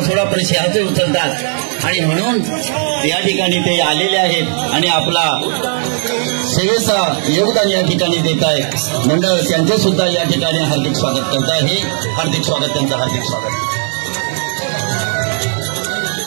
सोडा पण सिंहाचे उचलतात आणि म्हणून या ठिकाणी ते आलेले आहेत आणि आपला सेवेचा योगदान या ठिकाणी देत आहेत. मंडळ त्यांचे सुद्धा या ठिकाणी हार्दिक स्वागत करत आहे. हार्दिक स्वागत, त्यांचं हार्दिक स्वागत.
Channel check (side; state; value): left; silent; digital silence